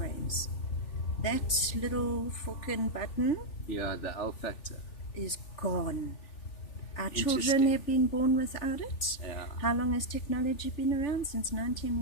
That little fucking button, the L factor, is gone. Our children have been born without it. Yeah. How long has technology been around? Since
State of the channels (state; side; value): late; right; 3.4 ms